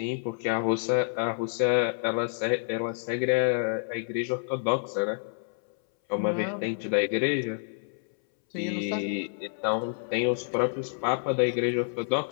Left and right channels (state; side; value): silent; right; 59 dB below the other